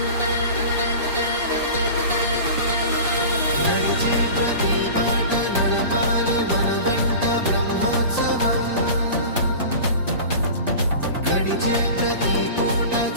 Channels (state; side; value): inverted; both; correlation -0.36